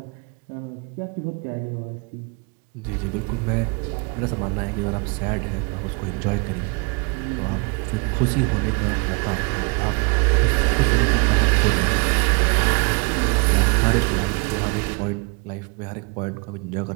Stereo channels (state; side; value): quieter; left; 31.1 dB